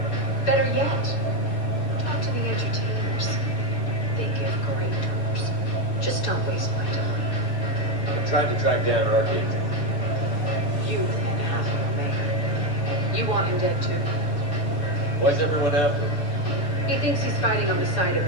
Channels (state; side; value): late; right; 6.7 ms